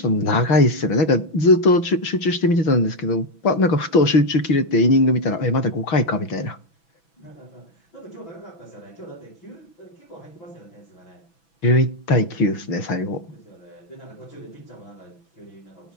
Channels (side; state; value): right; late; 6.1 ms